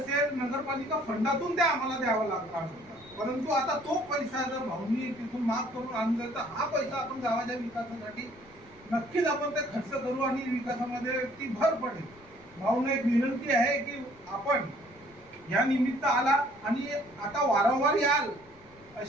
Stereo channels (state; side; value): noise; left; rumble, 26 dB below the sound